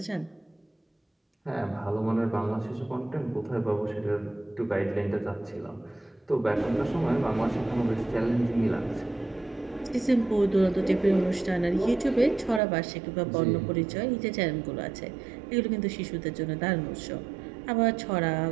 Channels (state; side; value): drops out; left; at 12.6 s